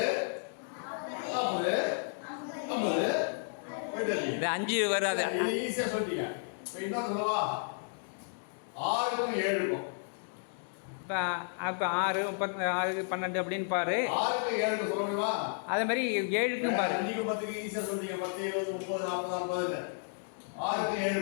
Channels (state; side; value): silent; right; digital silence